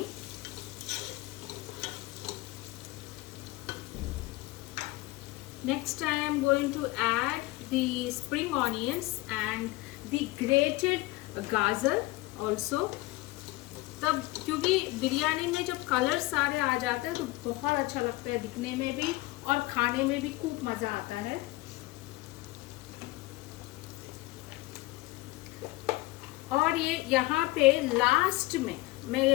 Next I am going to add the spring onions and the grated गाजर also. तब क्योंकि बिरयानी में जब colour सारे आ जाते हैं तो बहुत अच्छा लगता है दिखने में भी और खाने में भी खूब मज़ा आता है. और ये यहाँ पे लास्ट में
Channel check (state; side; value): quieter; right; 20.4 dB